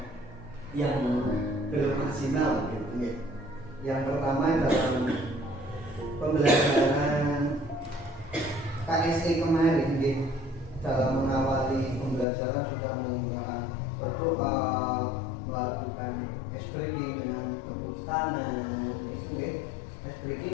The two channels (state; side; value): drops out; right; at 12.2 s